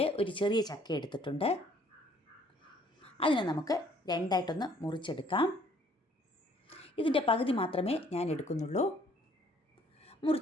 ഒരു ചെറിയ ചക്ക എടുത്തിട്ടുണ്ട്. അതിനെ നമുക്ക് രണ്ടായിട്ടൊന്ന് മുറിച്ചെടുക്കാം. ഇതിൻ്റെ പകുതി മാത്രമേ ഞാൻ എടുക്കുന്നുള്ളൂ.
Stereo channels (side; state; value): both; normal; correlation 0.61